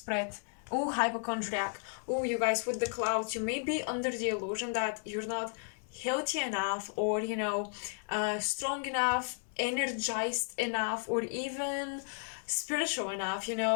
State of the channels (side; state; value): right; silent; 55 dB below the other